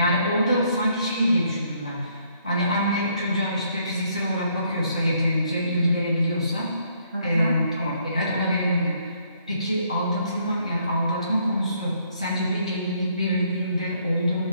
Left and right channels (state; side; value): inverted; both; correlation -0.69